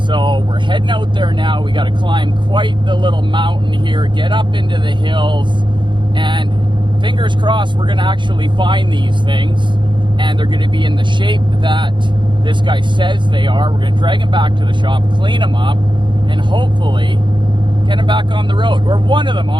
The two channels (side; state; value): left; late; 0.23 ms